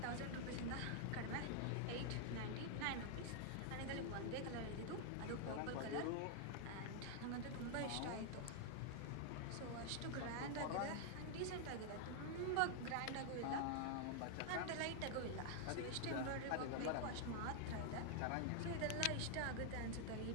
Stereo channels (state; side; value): different; both; correlation 0.00